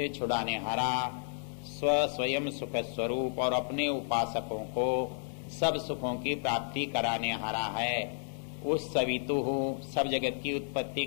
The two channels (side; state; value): right; silent; digital silence